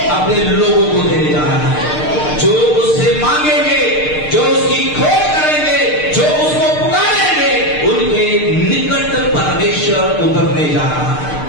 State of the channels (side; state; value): right; late; 6.6 ms